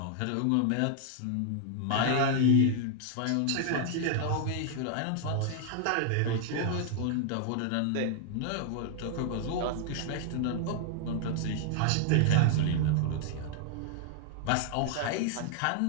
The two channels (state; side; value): different; both; correlation 0.00